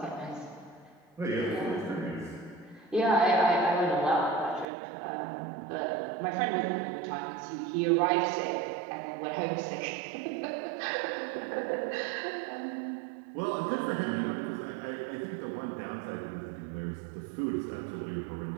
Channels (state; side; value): drops out; left; at 4.7 s